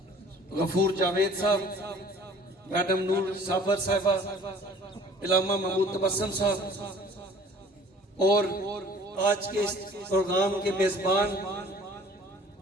غفور جاوید صاحب، میڈم نور صابر صاحبہ، علامہ محمود تبسم صاحب، اور آج کے اس پروگرام کے میزبان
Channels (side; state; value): both; normal; correlation 0.51